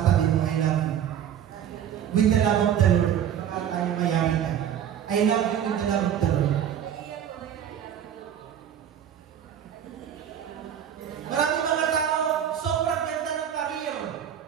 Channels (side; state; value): left; quieter; 9.6 dB